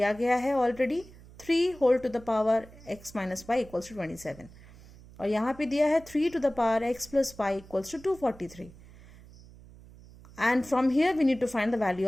गया है already, 3 whole to the power x minus y equals to 27 और यहाँ पे दिया है 3 to the power x plus y equals to 243 and from here we need to find the value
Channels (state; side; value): noise; right; hum, 21 dB below the sound